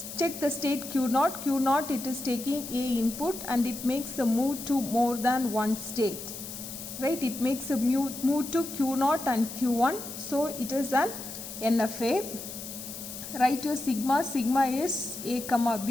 Check the state Q0. Q0, it is taking A input and it makes a move to more than one state, right? It makes a move to Q0 and Q1. So it is an NFA. Write your sigma. Sigma is A comma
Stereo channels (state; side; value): noise; left; hiss, 10 dB below the sound